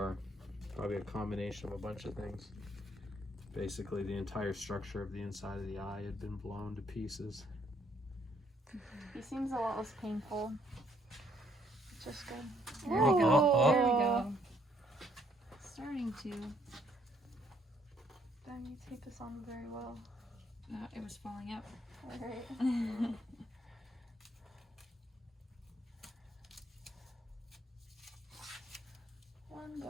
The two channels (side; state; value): both; normal; correlation 0.68